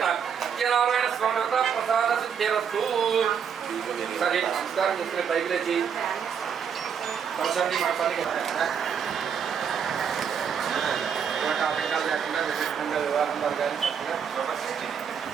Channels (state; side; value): quieter; left; 7.4 dB